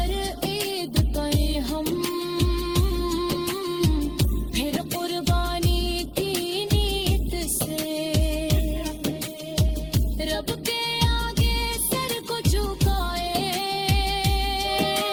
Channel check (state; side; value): identical; both; correlation 1.00